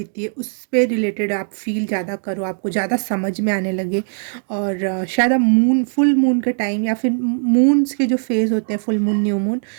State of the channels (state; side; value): silent; left; digital silence